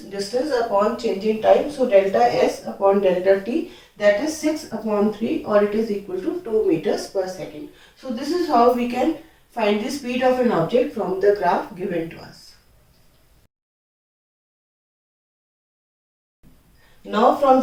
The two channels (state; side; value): identical; both; correlation 1.00